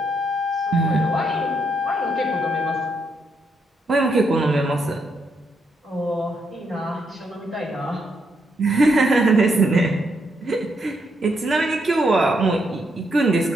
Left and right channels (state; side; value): normal; both; correlation 0.78